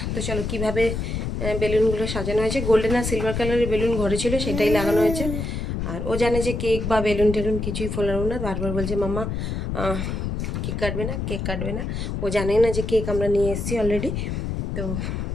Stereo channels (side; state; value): left; noise; rumble, 3 dB below the sound